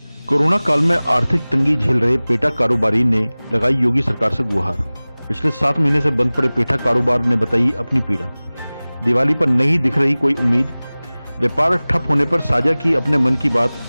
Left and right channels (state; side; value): inverted; both; correlation -0.99